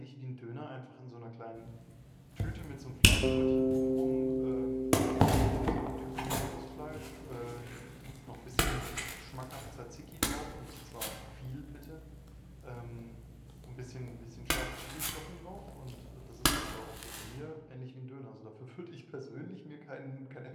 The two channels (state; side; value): identical; both; correlation 1.00